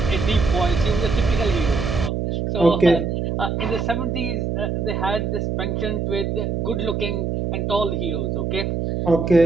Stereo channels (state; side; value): noise; right; hum, 1 dB below the sound